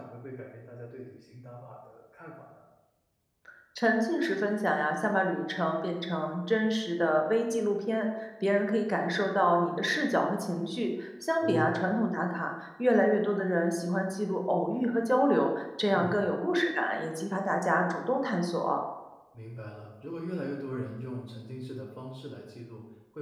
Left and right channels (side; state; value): both; identical; correlation 1.00